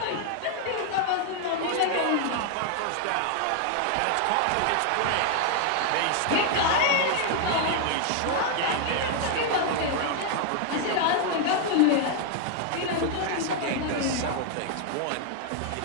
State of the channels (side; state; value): both; different; correlation 0.00